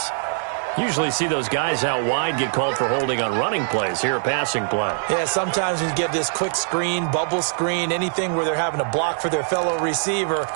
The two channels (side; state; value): left; silent; 61 dB below the other